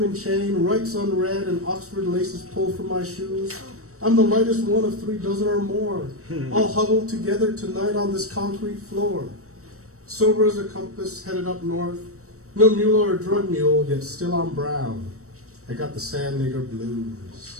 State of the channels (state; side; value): late; left; 0.65 ms